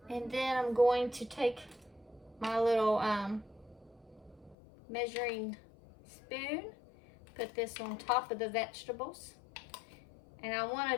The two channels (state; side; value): drops out; right; at 4.5 s